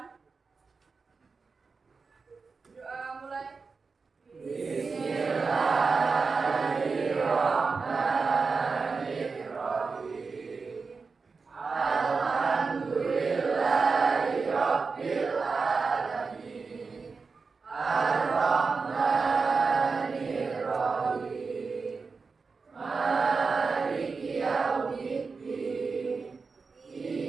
Doa mulai. Bismillahirrahmanirrahim. Alhamdulillahirabbil alamin. Ar-Rahmanir-Rahim. Maliki yaumiddin.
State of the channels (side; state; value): left; quieter; 4.7 dB